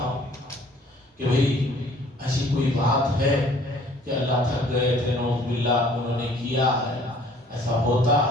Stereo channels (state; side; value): normal; both; correlation 0.55